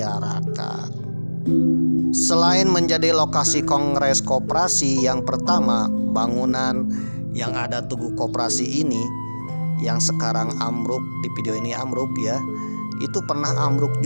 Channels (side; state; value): both; inverted; correlation -1.00